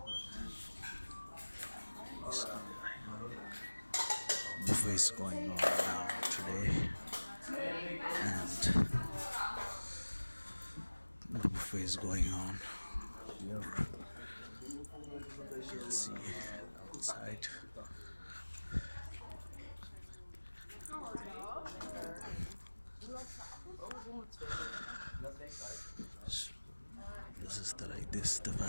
Buffet is going on now today, and the buffet is going on here. You can see outside. This is the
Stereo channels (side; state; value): both; inverted; correlation -1.00